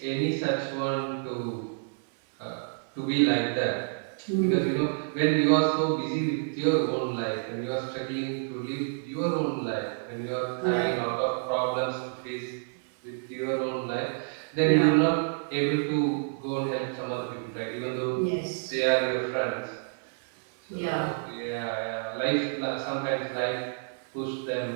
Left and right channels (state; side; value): silent; left; 56 dB below the other